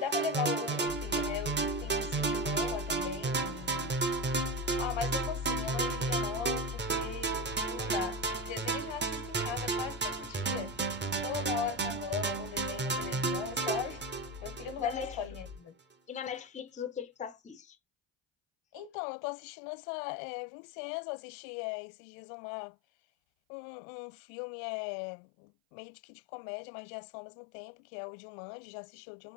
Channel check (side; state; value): right; drops out; at 18.9 s